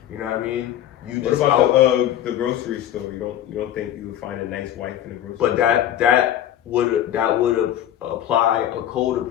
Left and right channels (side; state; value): right; quieter; 11.5 dB